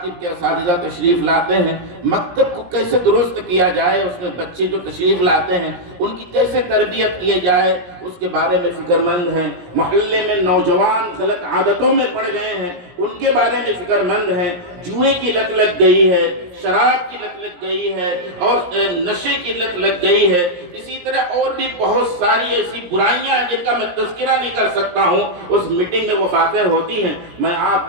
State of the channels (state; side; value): late; left; 17 ms